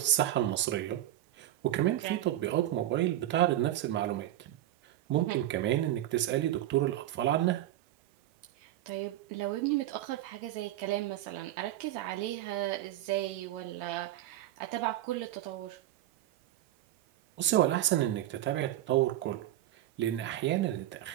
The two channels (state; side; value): quieter; left; 13.6 dB